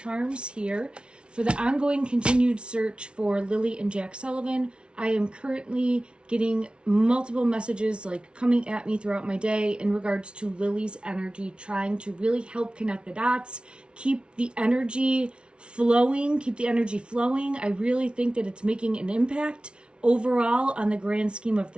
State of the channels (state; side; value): late; left; 0.057 ms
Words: here for the ongoing continued search for Lilly and Jack Sullivan. I am currently getting multiple messages like coming at me throughout my day in regards to Lily's energy, trying to really help connect the dots, keep the energy flowing. I really think that it's making an impact overall on the grand scheme of